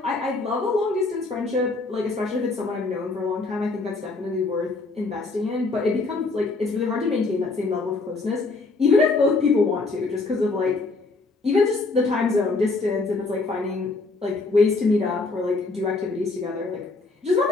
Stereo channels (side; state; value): right; quieter; 3.6 dB